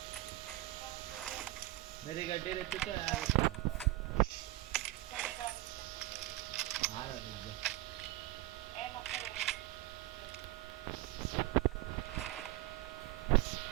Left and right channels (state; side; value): quieter; left; 17.8 dB